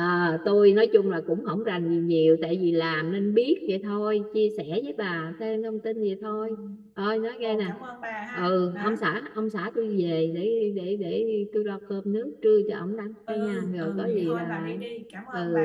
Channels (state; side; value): identical; both; correlation 1.00